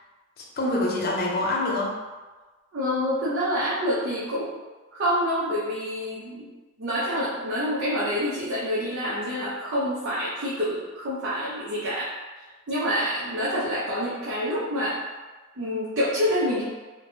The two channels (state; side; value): normal; both; correlation -0.03